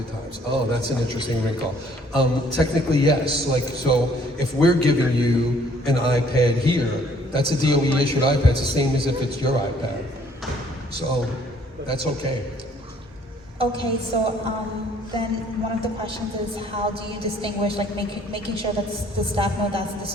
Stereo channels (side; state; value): both; normal; correlation 0.61